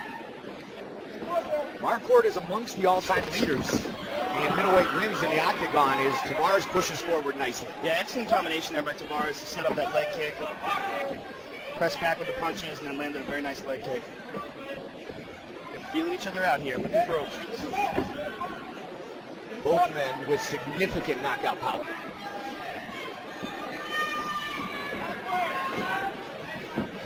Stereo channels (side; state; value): both; identical; correlation 1.00